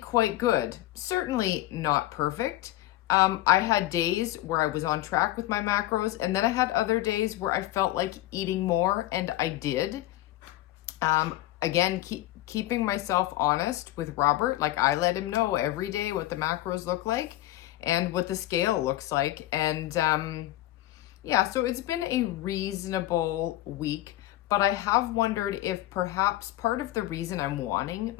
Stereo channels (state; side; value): quieter; right; 15.7 dB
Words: good. Certainly not perfect. I had days where I was on track with my macros, and then I had other days where I felt like eating more, and I did. Again, keeping myself honest with Robert. Like, I let him know every day what the macros look like and what the scale looks like. And yeah, so it's been a reasonable week, but I have wondered if perhaps part of the reason I'm wanting